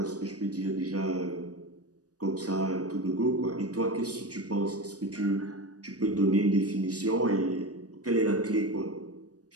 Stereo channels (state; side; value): late; left; 0.67 ms